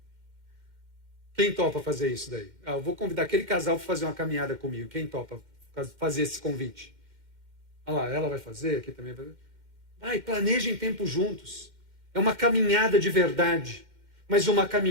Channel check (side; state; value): left; late; 2.1 ms